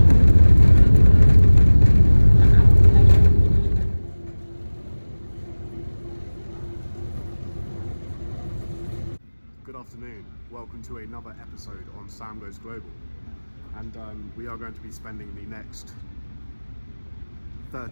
Good afternoon, welcome to another episode on Sam Goes Global, and we are going to be spending the next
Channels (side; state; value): both; inverted; correlation -1.00